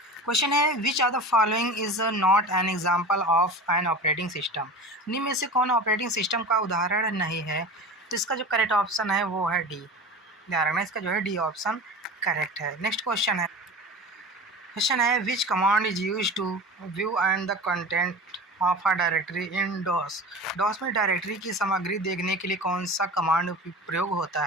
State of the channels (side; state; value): both; normal; correlation 0.33